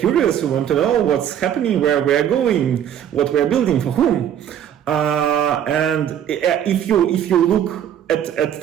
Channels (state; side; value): quieter; left; 9.8 dB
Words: we want to know what's happening, where we're going, what we're building, for whom. And if you look at